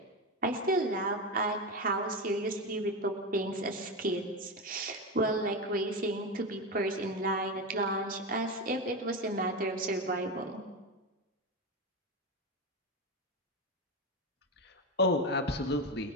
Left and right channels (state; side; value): normal; both; correlation 0.17